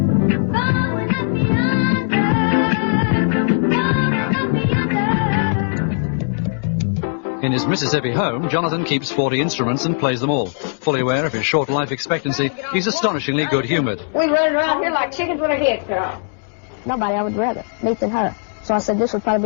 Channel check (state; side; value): silent; right; digital silence